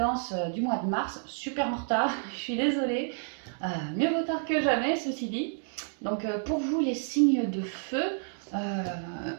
du mois de mars, super en retard, je suis désolée, mieux vaut tard que jamais ceci dit. Donc pour vous les signes de feu,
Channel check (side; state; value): left; silent; digital silence